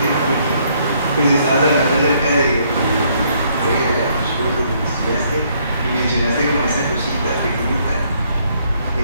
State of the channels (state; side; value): inverted; both; correlation -0.68